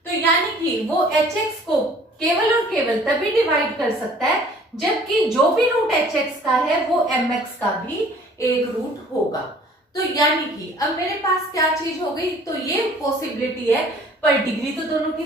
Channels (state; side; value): normal; both; correlation 0.53